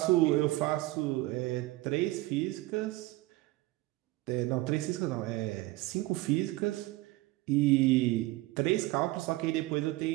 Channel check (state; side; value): quieter; left; 19.1 dB